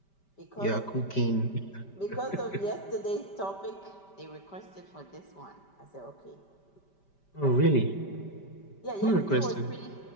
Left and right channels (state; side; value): late; right; 5.1 ms